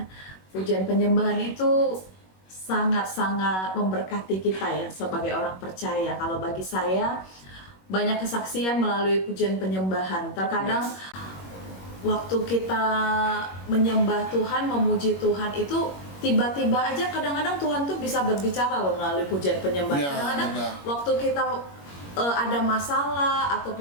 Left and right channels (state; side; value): late; right; 21 ms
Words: Pujian penyembahan itu sangat-sangat memberkati kita ya sebagai orang percaya. Kalau bagi saya banyak kesaksian melalui pujian penyembahan. Terkadang waktu kita menyembah Tuhan, memuji Tuhan itu tiba-tiba aja kadang-kadang Tuhan tuh bisa berbicara loh melalui pujian penyembahan. Ya, Kadang-kadang benar. waktu kita ada masalah